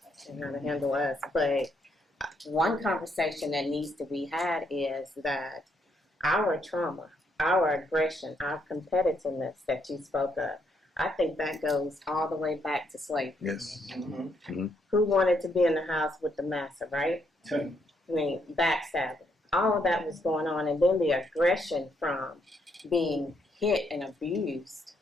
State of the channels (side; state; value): both; normal; correlation 0.75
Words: And how to handle us. But one conversation that needs to be had is that our trauma, our aggression, our competitiveness that you spoke of, I think that goes all the way back to slavery. Yes. Who wanted to be in the house with the massa, right? I mean, backstabbing. All of that was going on. And then the aggression from being hit and abused